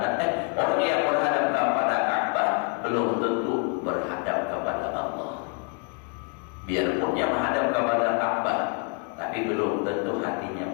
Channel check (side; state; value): right; quieter; 37.5 dB